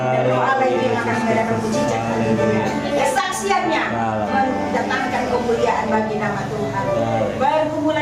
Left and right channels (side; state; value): both; identical; correlation 1.00